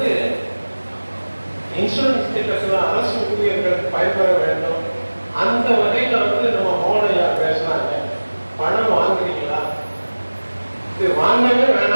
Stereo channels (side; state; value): both; inverted; correlation -1.00